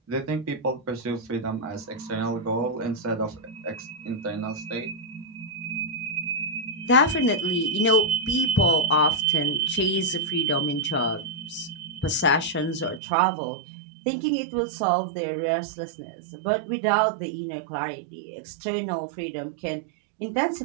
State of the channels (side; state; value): left; drops out; at 13.0 s